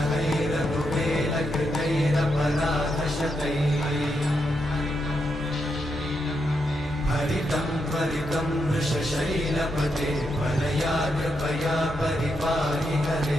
हरितं त्वरितं वृषशैलपते वरया कृपया परिपाहि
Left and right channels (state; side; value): normal; both; correlation 0.82